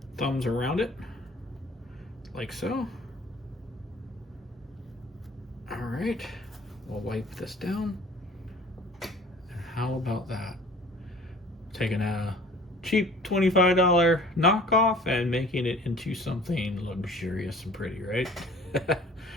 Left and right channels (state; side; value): normal; both; correlation 0.49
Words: thumbs around it, like so. All right, we'll wipe this down. How about that? Taking a cheap $25 knockoff and making it into something luxurious and pretty, right?